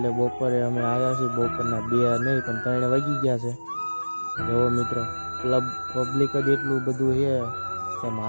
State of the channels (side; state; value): both; inverted; correlation -1.00